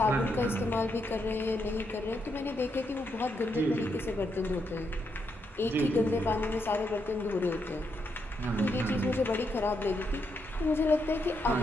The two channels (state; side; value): normal; both; correlation 0.80